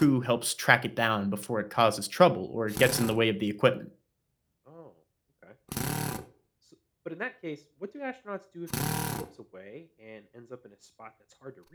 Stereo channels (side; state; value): both; identical; correlation 1.00